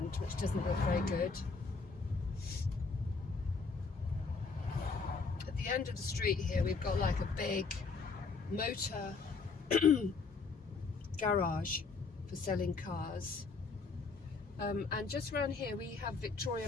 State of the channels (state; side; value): quieter; right; 4.5 dB